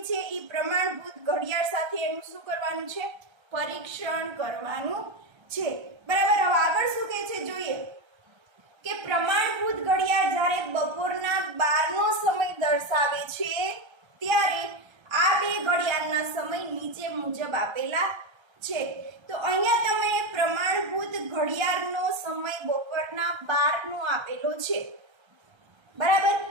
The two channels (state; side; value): late; left; 1.3 ms